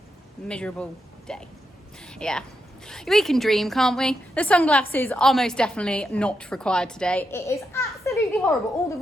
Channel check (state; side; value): normal; both; correlation 0.84